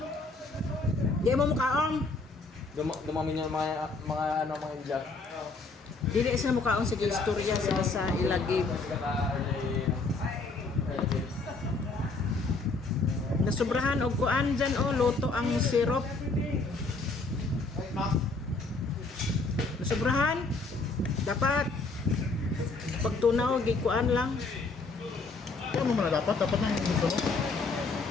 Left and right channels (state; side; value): quieter; right; 3.7 dB